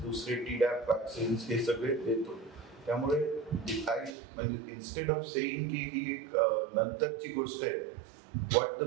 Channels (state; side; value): drops out; left; at 4.2 s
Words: दुसरे TDAP वॅक्सिन्स हे सगळे देतो. त्यामुळे म्हणजे इन्स्टेड ऑफ सेईंग की ही एक नंतरची गोष्ट आहे, what the